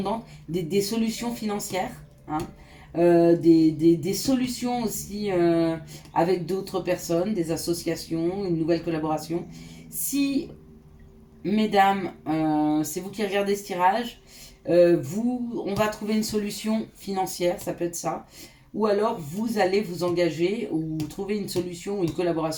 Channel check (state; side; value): identical; both; correlation 1.00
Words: des solutions financières, hein, des solutions aussi avec d'autres personnes, des associations, une nouvelle collaboration. Si, mesdames, c'est vous qui regardez ce tirage, on va trouver une solution financière, ça peut être ça. Ou alors vous allez vous engager ou trouver une solution ou une